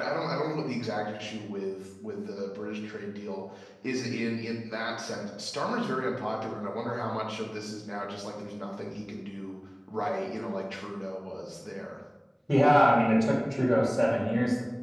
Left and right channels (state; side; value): identical; both; correlation 1.00